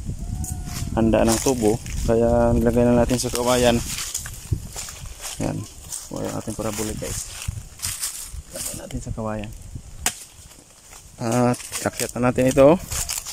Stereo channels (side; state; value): both; identical; correlation 1.00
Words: handa ng tubo, kaya nilagay na natin sa kawayan. Yan, yung ating parabolic guys, lagay natin sa kawayan at kakyat na natin ito